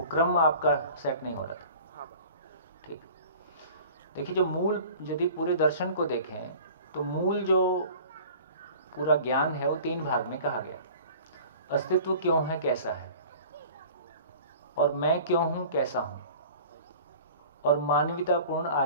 क्रम आपका सेट नहीं हो रहा था। ठीक, देखिए जो मूल, यदि पूरे दर्शन को देखें तो मूल जो पूरा ज्ञान है वो 3 भाग में कहा गया। अस्तित्व क्यों है, कैसा है, और मैं क्यों हूं, कैसा हूं, और मानवीयतापूर्ण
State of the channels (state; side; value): inverted; both; correlation -0.44